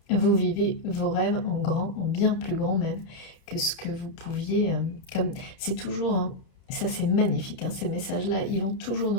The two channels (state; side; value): late; right; 31 ms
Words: Vous vivez vos rêves en grand, en bien plus grand même que ce que vous pouviez. Comme c'est toujours, hein, ça c'est magnifique. Hein, ces messages-là, ils vont toujours